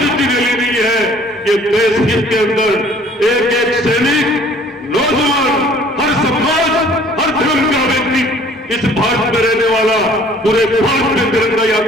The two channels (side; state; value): both; normal; correlation 0.55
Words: रैली नहीं है, ये देश हित के अंदर एक एक सैनिक, नौजवान, हर समाज, हर धर्म का व्यक्ति, इस भारत में रहने वाला पूरे भारत में तिरंगा